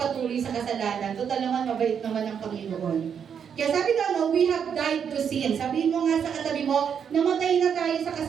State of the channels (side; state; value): left; quieter; 7.6 dB